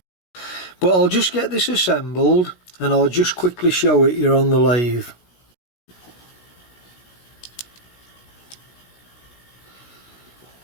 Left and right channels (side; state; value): right; late; 16 ms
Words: But I'll just get this assembled and I'll just quickly show it here on the lathe.